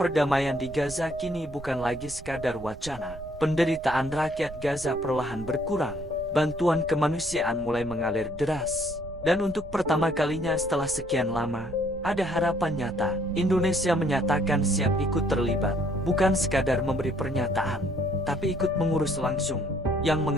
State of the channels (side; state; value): right; noise; rumble, 14 dB below the sound